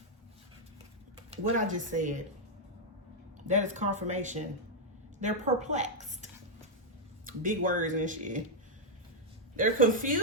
What I just said, that is confirmation. They're perplexed. Big words and shit. They're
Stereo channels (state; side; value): normal; both; correlation -0.02